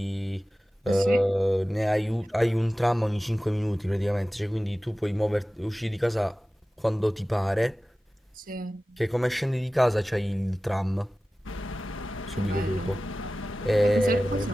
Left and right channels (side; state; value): both; normal; correlation 0.96